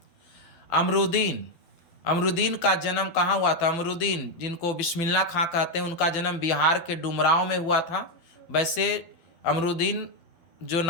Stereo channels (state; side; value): late; right; 12 ms